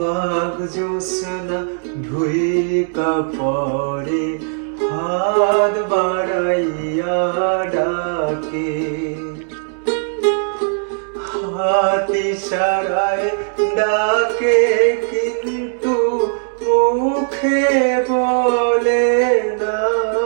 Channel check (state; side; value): silent; left; digital silence